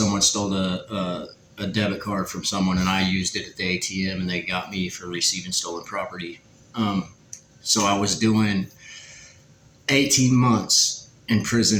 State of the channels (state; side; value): identical; both; correlation 1.00